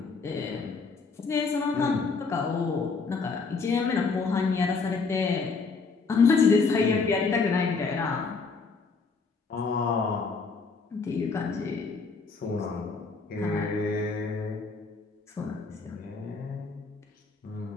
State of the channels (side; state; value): right; quieter; 4.6 dB